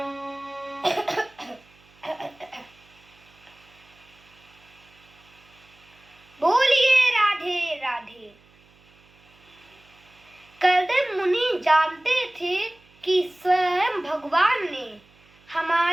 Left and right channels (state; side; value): noise; right; hum, 29 dB below the sound